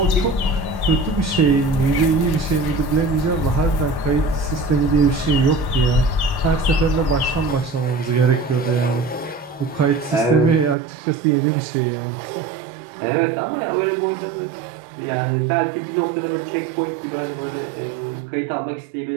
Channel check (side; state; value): left; drops out; at 10.8 s